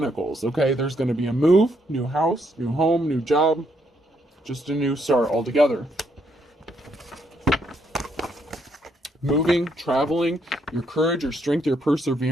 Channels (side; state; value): both; normal; correlation 0.74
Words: Okay, there's going to be a move, new house, new home, new job, just a new start altogether. Moving, traveling, your courage, your strength, your